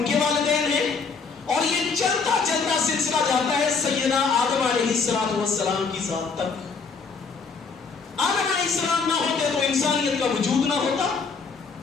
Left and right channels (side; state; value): right; quieter; 5.0 dB